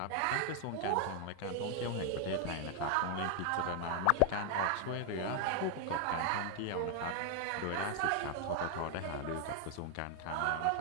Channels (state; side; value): different; both; correlation 0.00